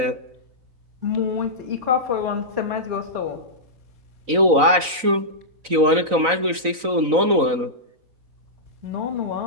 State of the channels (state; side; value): late; left; 4.0 ms